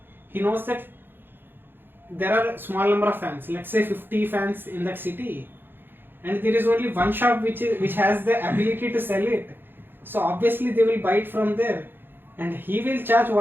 he knows that there are a small number of fans. Let's say 50 fans in that city, and there is only one shop which has the ability to sell it. So obviously they will buy it from there, and he will charge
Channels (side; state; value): left; late; 0.10 ms